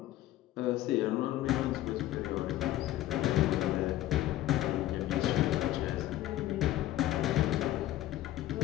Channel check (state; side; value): quieter; right; 14.5 dB